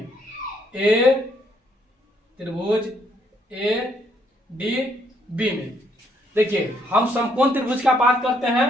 त्रिभुज ADB में। देखिए हम समकोण त्रिभुज का बात करते हैं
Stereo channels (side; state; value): both; normal; correlation 0.70